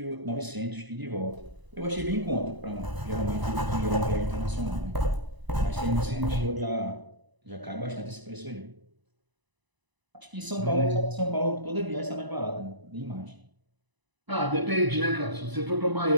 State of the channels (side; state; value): left; late; 1.0 ms